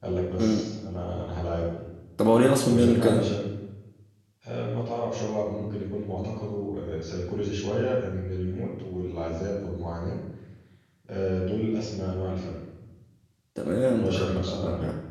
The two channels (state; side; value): identical; both; correlation 1.00